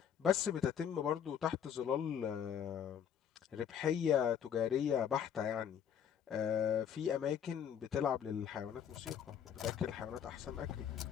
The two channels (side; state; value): right; quieter; 8.5 dB